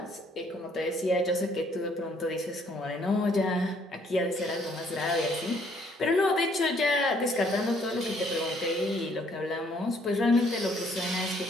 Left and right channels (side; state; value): both; normal; correlation 0.65